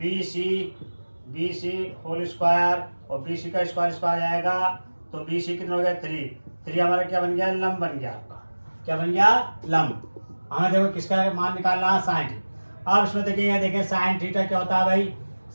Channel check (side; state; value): both; inverted; correlation -1.00